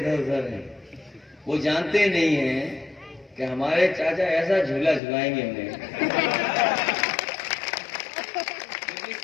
उधर है। वो जानते नहीं हैं कि हमारे चाचा ऐसा झूला झुलाएंगे हमें।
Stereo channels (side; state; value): right; drops out; at 5.0 s